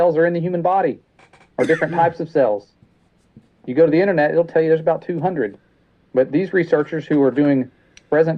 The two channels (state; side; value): identical; both; correlation 1.00